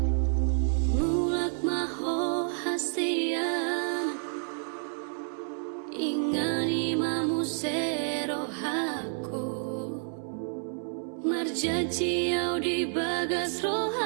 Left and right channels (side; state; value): left; silent; 58 dB below the other